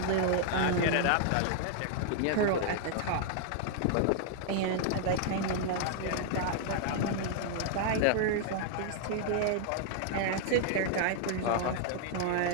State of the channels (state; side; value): different; both; correlation 0.00